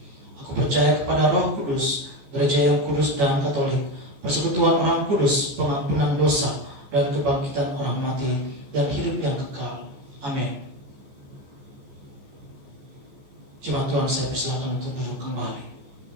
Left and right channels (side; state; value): left; late; 14 ms